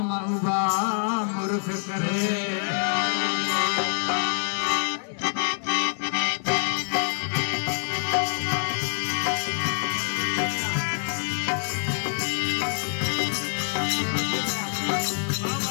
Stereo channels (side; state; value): right; silent; digital silence